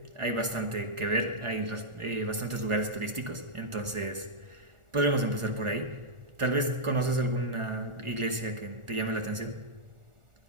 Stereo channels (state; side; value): late; left; 1.4 ms